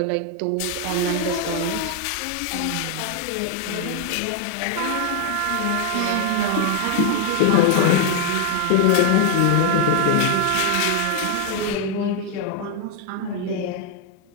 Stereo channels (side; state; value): both; different; correlation 0.01